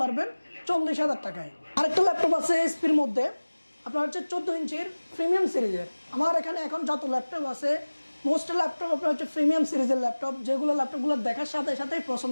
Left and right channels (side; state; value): both; inverted; correlation -1.00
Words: পারবেন 40,000 টাকায়। আরেকটা ল্যাপটপ আছে এইচপির মধ্যে, আপনার হচ্ছে 14 ইঞ্চির প্রিমিয়াম সিরিজের। আমার এখানে এখন যত ল্যাপটপ আছে মোস্ট ল্যাপটপ আপনার হচ্ছে প্রিমিয়াম সিরিজের ল্যাপটপ, যেগুলো ল্যাপটপগুলো দেখার সাথে সাথেই